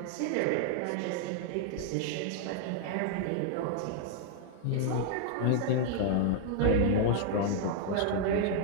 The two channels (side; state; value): both; different; correlation 0.00